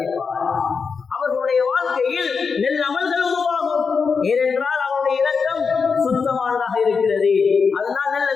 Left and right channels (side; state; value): right; quieter; 5.4 dB